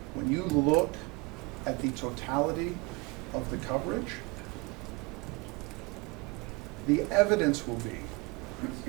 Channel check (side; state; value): left; quieter; 26.8 dB